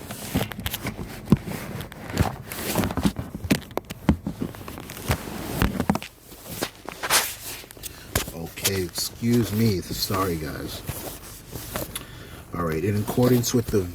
Okay, excuse me. Sorry, guys. All right, in accordance with the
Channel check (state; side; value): identical; both; correlation 1.00